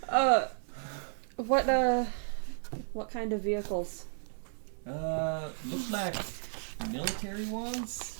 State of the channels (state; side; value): silent; left; 56 dB below the other